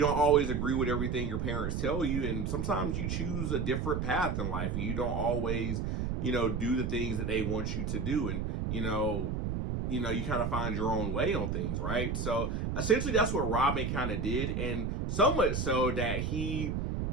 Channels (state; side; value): noise; right; rumble, 1 dB below the sound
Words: don't always agree with everything your parents tell you. And sometimes you choose a different path in life and you don't always, do the things that they want you to do. And, you kind of find your own way on things, right? So essentially that's what Robin kind of did. And so much so that